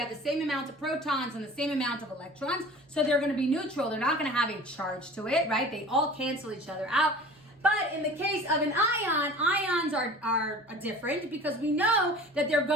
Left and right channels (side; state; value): both; normal; correlation 0.42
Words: the same amount of protons and the same amount of electrons, so they're going to be neutral. They're not going to have a charge to it, right? They all cancel each other out. But in the case of an ion, ions are different because we know that they're